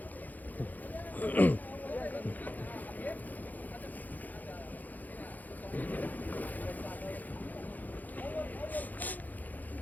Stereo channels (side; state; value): right; late; 0.082 ms